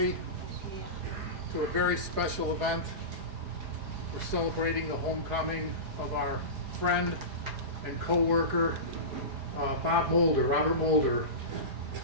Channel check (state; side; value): late; left; 4.8 ms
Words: to a very special event. We're celebrating the homecoming of our friend and co-worker, Robert Moulder,